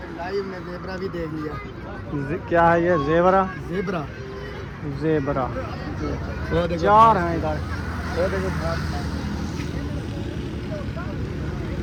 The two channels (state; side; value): identical; both; correlation 1.00